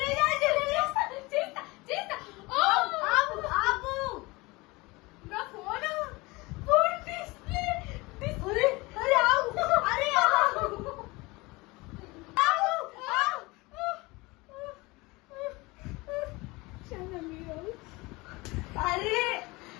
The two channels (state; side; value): quieter; right; 23.4 dB